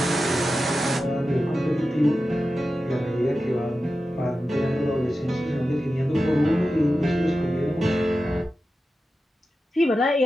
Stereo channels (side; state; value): both; normal; correlation 0.92